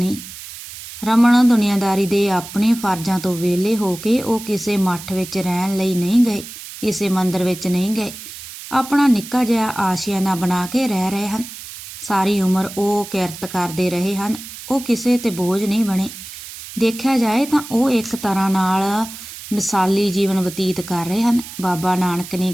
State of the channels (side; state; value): right; noise; hiss, 13 dB below the sound